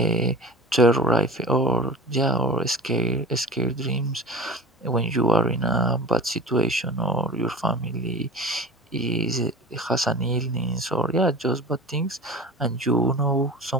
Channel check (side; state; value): both; normal; correlation 0.36